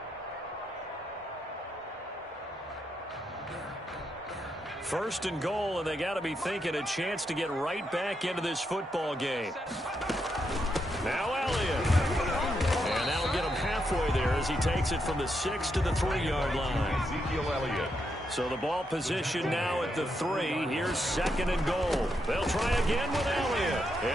First and goal, and they got to be thinking a chance to get right back into this football game. Now Elliott. And that'll get him halfway there as he takes it from the 6 to the 3-yard line. Ezekiel Elliott. So the ball position now at the 3. Here's second and goal. They'll try again with Elliott.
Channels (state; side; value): normal; both; correlation 0.81